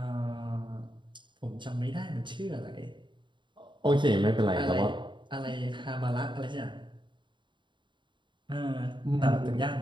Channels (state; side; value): late; left; 0.23 ms